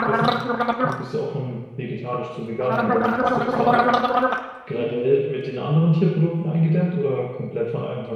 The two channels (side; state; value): both; identical; correlation 1.00